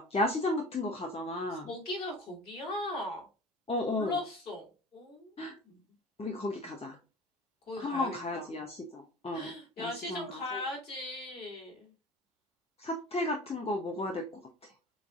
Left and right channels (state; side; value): normal; both; correlation 0.40